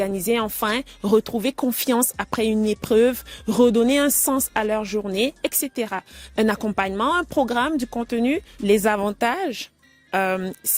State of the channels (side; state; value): both; identical; correlation 1.00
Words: enfin, retrouver confiance après une épreuve, redonner un sens à leur journée, etc. Un accompagnement, un programme, du contenu, les avantages.